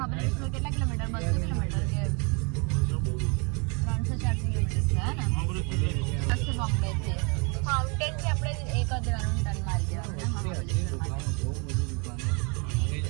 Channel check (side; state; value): left; quieter; 32.9 dB